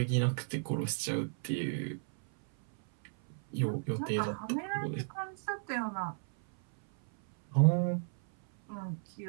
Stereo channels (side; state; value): left; silent; 55 dB below the other